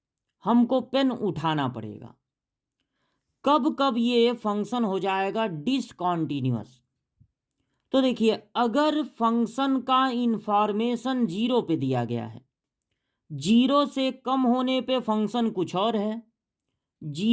हमको पेन उठाना पड़ेगा, कब कब ये फंक्शन हो जाएगा डिसकंटीन्यूअस। तो देखिए, अगर फंक्शन का इंफॉर्मेशन जीरो पे दिया गया है, जीरो से कम होने पे फंक्शन कुछ और है,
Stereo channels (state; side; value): identical; both; correlation 1.00